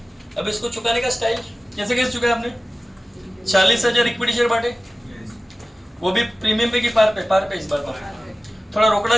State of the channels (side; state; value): both; normal; correlation 0.96